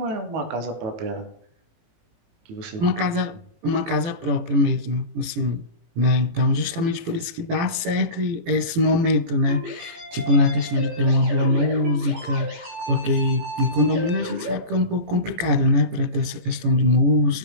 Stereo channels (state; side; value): late; left; 18 ms